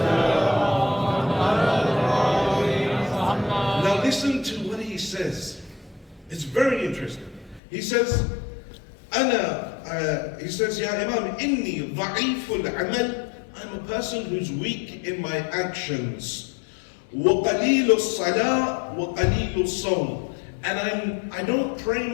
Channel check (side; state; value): right; drops out; at 7.6 s